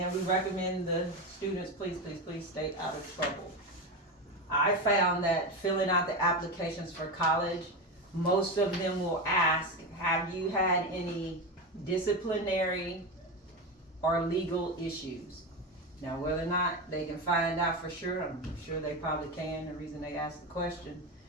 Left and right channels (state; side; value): normal; both; correlation 0.17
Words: we recommend the students, please stay out of trouble. I found that filling out the applications for college, most of them will ask, have you had any disciplinary or legal issues? Now, whether or not they can find out for sure, I'm sure they probably can, the reason they asked the question,